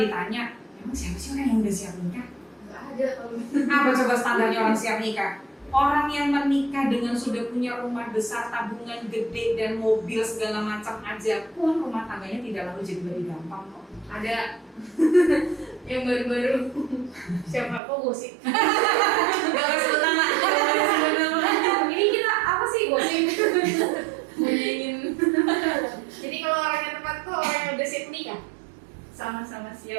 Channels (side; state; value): left; drops out; at 17.8 s